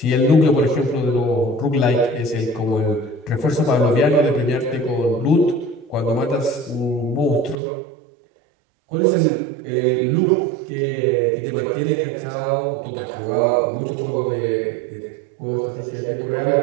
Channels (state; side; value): drops out; left; at 7.6 s